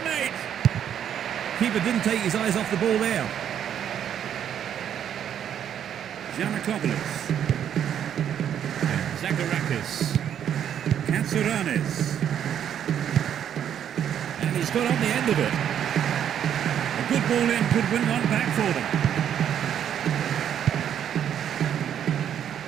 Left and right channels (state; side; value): quieter; left; 9.4 dB